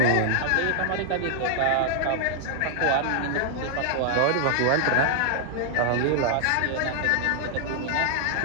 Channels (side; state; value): both; different; correlation 0.00